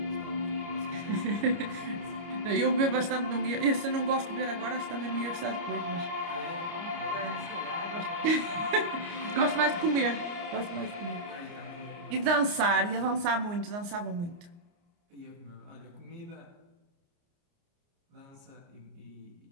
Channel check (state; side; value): late; left; 29 ms